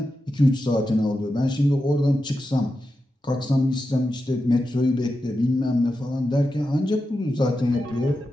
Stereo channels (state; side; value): normal; both; correlation 0.90